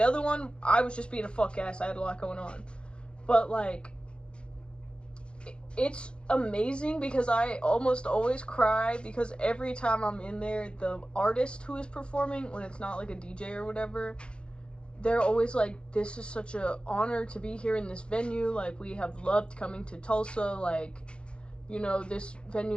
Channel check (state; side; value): late; right; 0.055 ms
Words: other one, I was just being a fuck ass. I had a lot going on. But, like, it's amazing because I almost always cry because every time I'm in there, the artist who is performing, when it's not like a DJ or whatever, they're always like, this is such an honor to be here in this venue. Like, we have loved coming to Tulsa. Like, you know, this